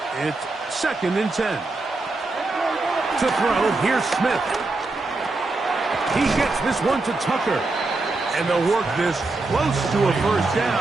It's 2nd and 10. To throw, here's Smith. He gets this one to Tucker. And they'll work this close to a first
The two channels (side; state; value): left; quieter; 3.3 dB